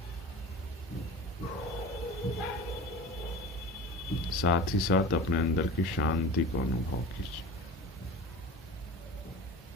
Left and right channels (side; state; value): both; normal; correlation 0.35